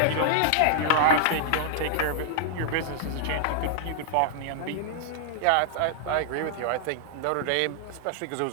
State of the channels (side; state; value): both; different; correlation -0.01